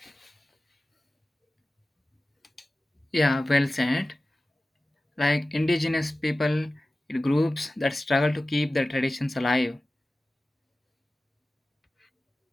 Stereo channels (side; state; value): both; normal; correlation 0.96